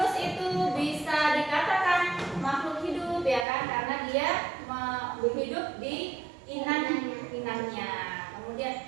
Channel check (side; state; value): left; drops out; at 3.5 s